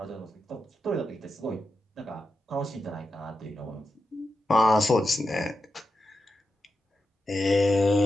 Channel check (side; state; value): both; normal; correlation 0.88